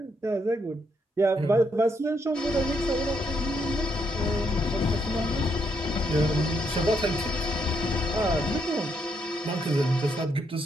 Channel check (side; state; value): both; normal; correlation 0.76